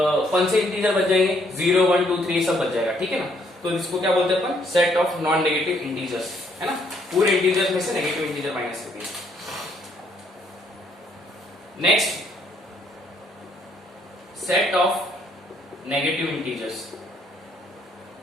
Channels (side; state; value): both; normal; correlation 0.68